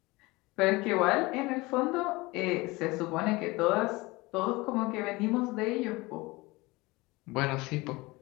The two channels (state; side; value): quieter; right; 22.5 dB